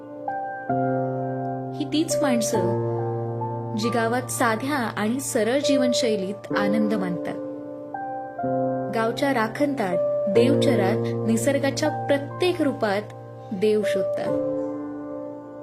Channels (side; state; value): both; identical; correlation 1.00